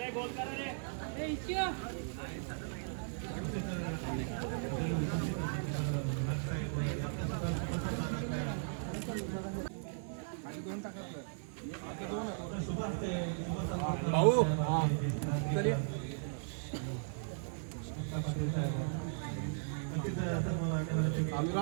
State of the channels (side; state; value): left; silent; 53 dB below the other